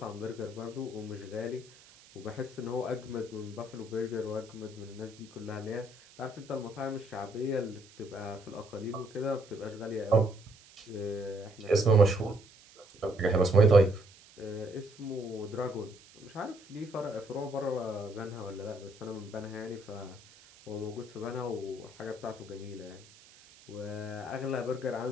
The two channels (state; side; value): noise; right; hiss, 23 dB below the sound